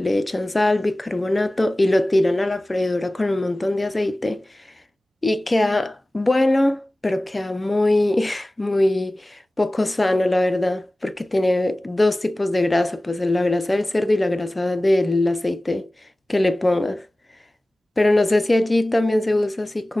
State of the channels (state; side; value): normal; both; correlation 0.97